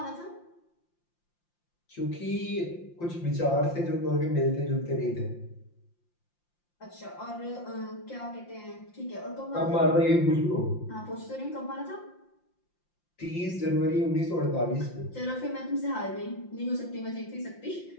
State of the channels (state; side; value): late; right; 5.7 ms